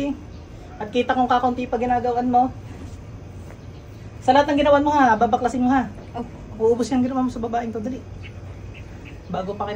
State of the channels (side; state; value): both; identical; correlation 1.00